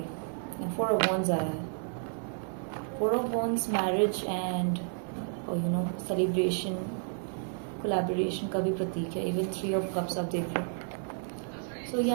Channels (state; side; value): silent; left; 57 dB below the other